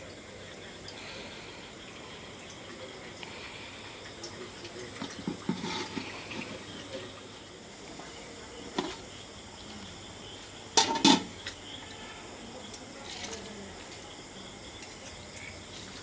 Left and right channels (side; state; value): both; identical; correlation 1.00